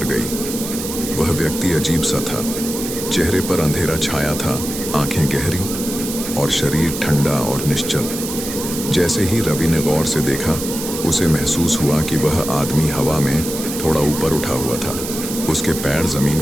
गई। वह व्यक्ति अजीब सा था। चेहरे पर अंधेरा छाया था, आंखें गहरी और शरीर ठंडा और निश्चल। जैसे ही रवि ने गौर से देखा, उसे महसूस हुआ कि वह आदमी हवा में थोड़ा ऊपर उठा हुआ था। उसके पैर जमीन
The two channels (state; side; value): noise; right; hiss, 7 dB below the sound